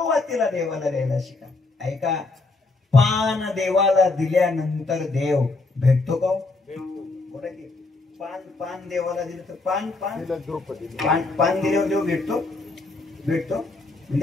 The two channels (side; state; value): right; quieter; 3.4 dB